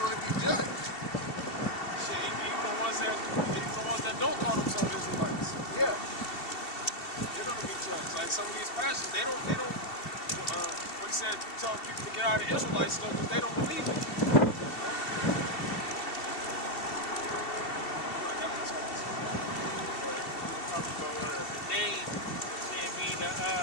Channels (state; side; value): late; right; 2.7 ms